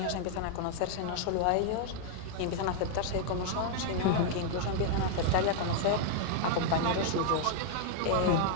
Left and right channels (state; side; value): different; both; correlation 0.00